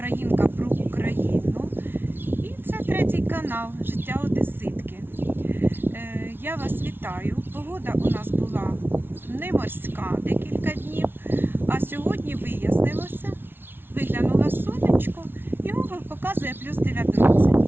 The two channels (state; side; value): late; left; 0.11 ms